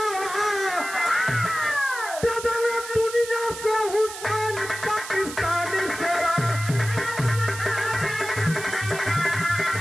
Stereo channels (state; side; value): noise; right; hiss, 11 dB below the sound